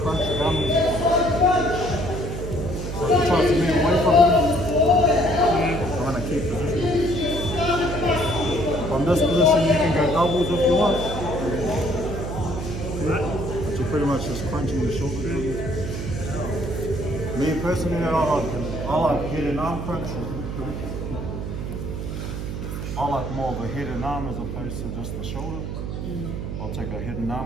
it down. So if he tries to move away from him, I'm going to keep position. From this position, you can go doubles if you want. But you're pretty much just crunching the shoulder. Me personally, I like head and arm crunch. I like more of a head and arm as opposed to just the shoulder. I'll take a head and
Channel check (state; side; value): noise; right; hum, 5 dB below the sound